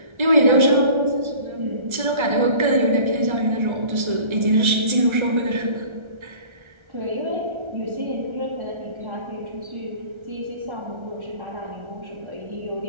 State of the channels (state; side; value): late; left; 1.3 ms